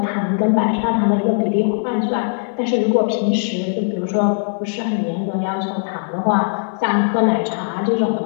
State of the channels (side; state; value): right; silent; digital silence